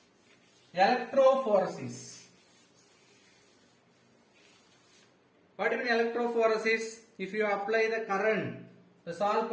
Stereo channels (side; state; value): both; identical; correlation 1.00